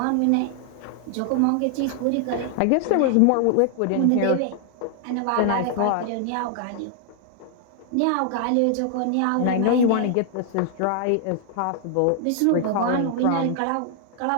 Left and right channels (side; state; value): both; different; correlation 0.00